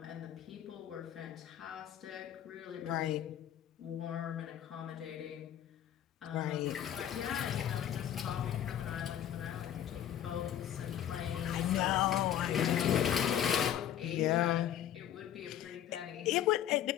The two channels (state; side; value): quieter; right; 10.6 dB